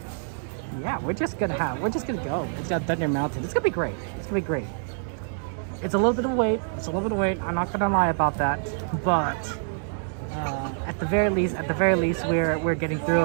yeah, we're just gonna go. It's at Thunder Mountain. It's gonna be great. It's gonna be great. It's a little bit of wait. I'm not gonna lie about that, but at the very least, we're getting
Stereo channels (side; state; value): left; silent; 60 dB below the other